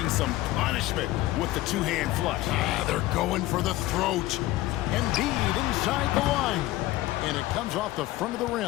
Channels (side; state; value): right; quieter; 16.8 dB